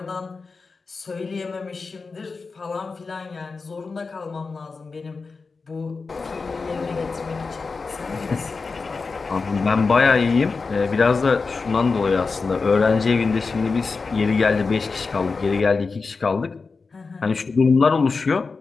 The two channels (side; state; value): right; quieter; 4.4 dB